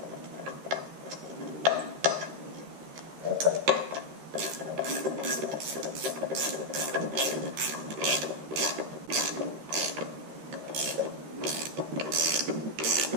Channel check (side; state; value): left; late; 13 ms